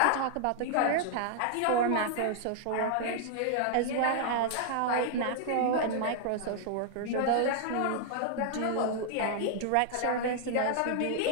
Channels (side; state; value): both; different; correlation -0.01